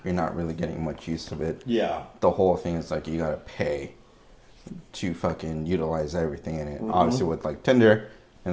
you're not really getting much use of it. Yeah. The whole thing is like you gotta pay to fucking utilize everything in it. Mm-hmm. Obviously, with like Tinder,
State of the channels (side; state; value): both; identical; correlation 1.00